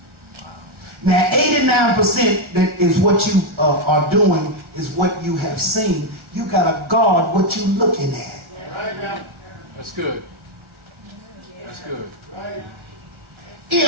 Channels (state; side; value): late; left; 1.4 ms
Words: Now, 89% that is what you are doing is what you have seen. You got to guard what you're looking at. That's good. That's good.